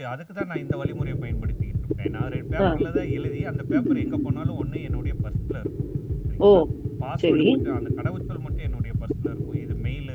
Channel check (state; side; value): identical; both; correlation 1.00